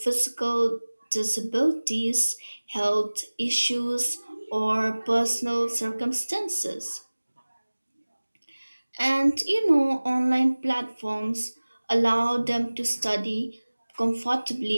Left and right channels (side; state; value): both; inverted; correlation -1.00